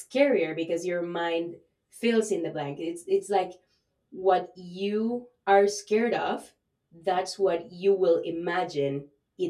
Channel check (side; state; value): both; identical; correlation 1.00